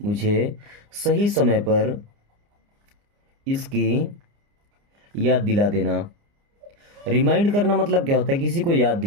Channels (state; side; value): late; left; 29 ms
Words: मुझे सही समय पर इसकी याद दिला देना। रिमाइंड करना मतलब क्या होता है, किसी को याद